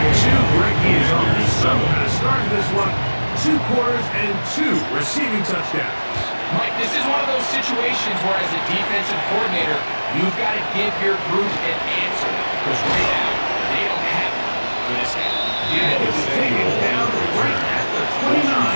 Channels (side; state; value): both; inverted; correlation -1.00